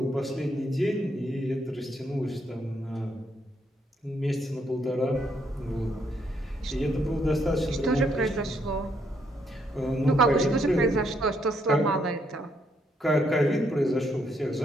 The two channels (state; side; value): normal; both; correlation 0.74